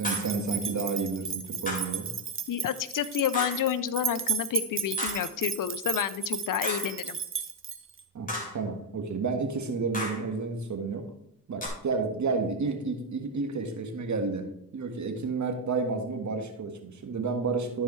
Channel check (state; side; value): normal; both; correlation 0.03